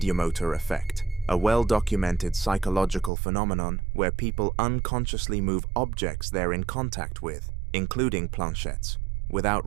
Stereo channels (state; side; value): drops out; left; at 3.1 s